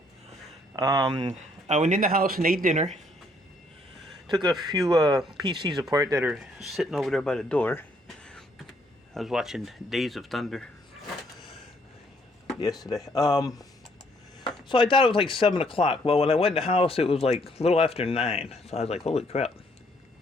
I went in the house and ate dinner. Took a few PCs apart that are sitting over there by the door. I was watching Days of Thunder yesterday. So I thought it was like 7 o'clock. Well, when I went in the house, it was like a little after 9. So I was like, holy crap.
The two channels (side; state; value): both; normal; correlation 0.68